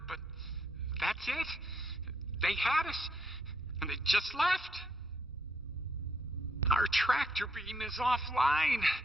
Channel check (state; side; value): normal; both; correlation 0.75